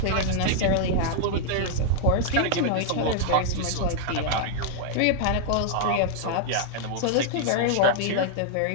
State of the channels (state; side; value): different; both; correlation -0.01